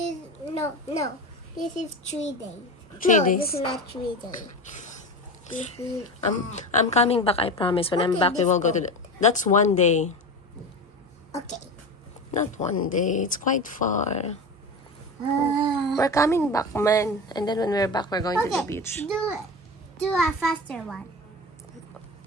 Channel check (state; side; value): normal; both; correlation 0.26